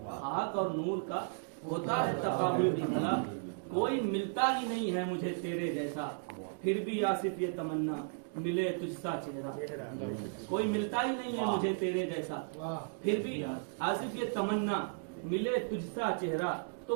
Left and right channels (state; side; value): silent; left; digital silence